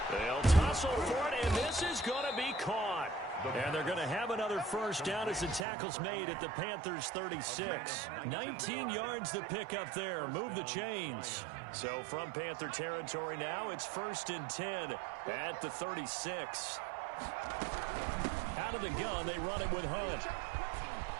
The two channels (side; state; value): left; drops out; at 5.7 s